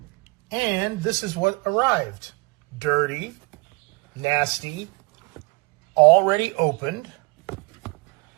And this is what arrived. Dirty, nasty, already opened,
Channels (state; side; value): quieter; left; 27.5 dB